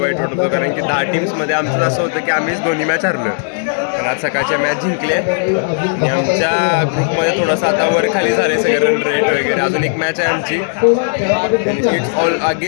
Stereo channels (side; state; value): right; silent; 65 dB below the other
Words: वाईट वाटत होतं कारण की 10 टीम्समध्ये आमचं असं होतं की आम्हीच दोन्ही मॅच हरलो. पण आज सकाळच्या मॅच जिंकले आणि आमच्या ग्रुपमध्ये थोडंसं आता वर खाली झाले सगळे रन रेट वगैरे. अजून एक मॅच आहे आमची. It's all